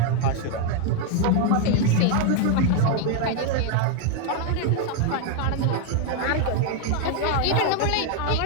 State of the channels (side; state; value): both; different; correlation 0.01